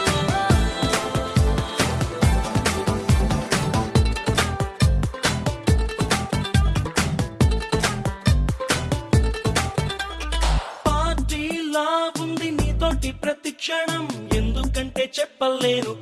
పార్టీలా ఉంది నీతోటి ప్రతి క్షణం, ఎందుకంటే చెప్పలేను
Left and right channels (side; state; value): both; identical; correlation 1.00